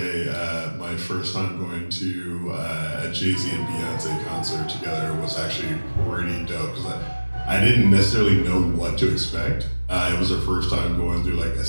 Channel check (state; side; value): inverted; both; correlation -1.00